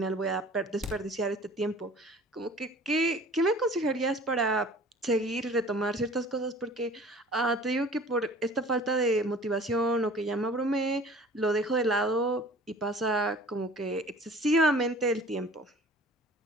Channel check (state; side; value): normal; both; correlation 0.47